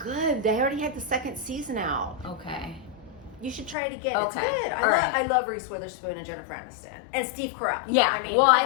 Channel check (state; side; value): drops out; right; at 3.8 s